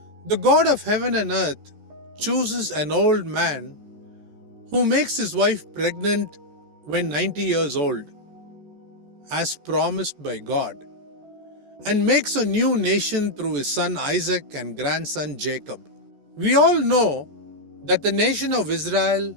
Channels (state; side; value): late; left; 14 ms